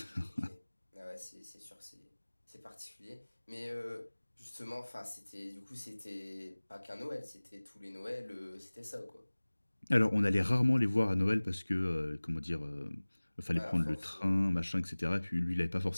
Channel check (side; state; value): both; inverted; correlation -1.00